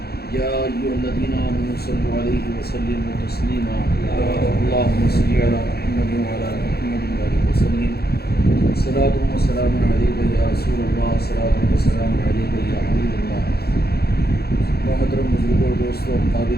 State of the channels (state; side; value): late; right; 0.46 ms